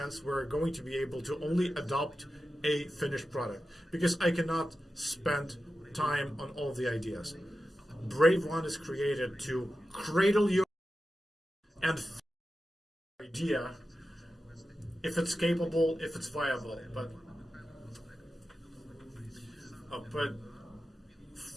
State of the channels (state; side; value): normal; both; correlation 0.92